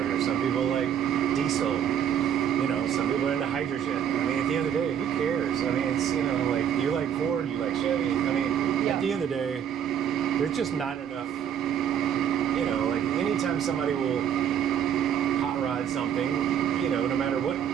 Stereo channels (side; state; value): left; quieter; 8.9 dB